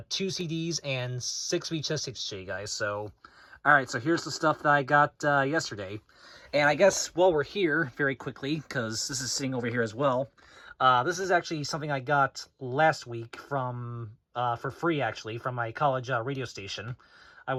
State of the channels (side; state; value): both; identical; correlation 1.00